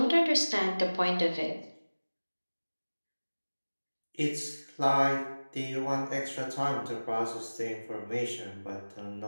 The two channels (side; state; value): both; inverted; correlation -1.00